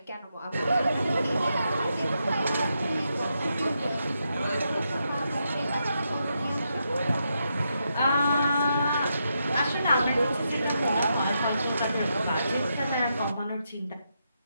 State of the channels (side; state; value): both; inverted; correlation -0.83